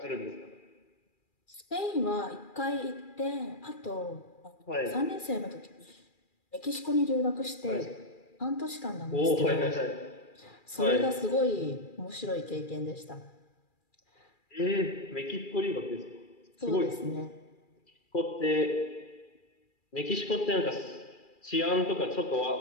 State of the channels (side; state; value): right; late; 2.4 ms